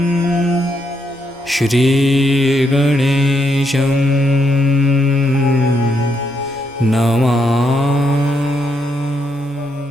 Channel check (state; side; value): normal; both; correlation 0.78